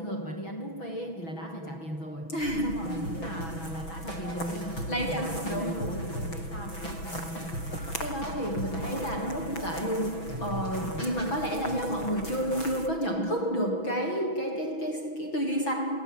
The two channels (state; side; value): late; right; 6.1 ms